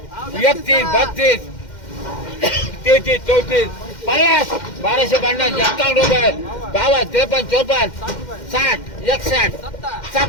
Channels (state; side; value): late; right; 2.1 ms